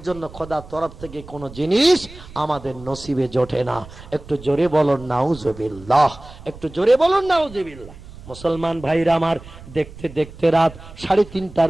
জন্য খোদার তরফ থেকে কোনো জিনিস আমাদের নসিবে জোটে না। একটু জোরে বলুন নাউজুবিল্লাহ, একটু জোরে বলুন নাউজুবিল্লাহ। মুসলমান ভাইরা আমার, দেখতে দেখতে রাত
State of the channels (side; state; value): right; noise; rumble, 18 dB below the sound